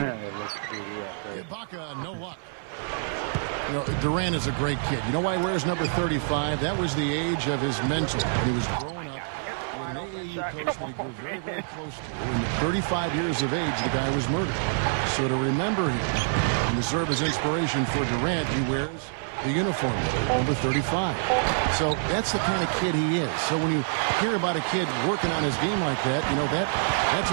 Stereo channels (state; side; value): silent; left; digital silence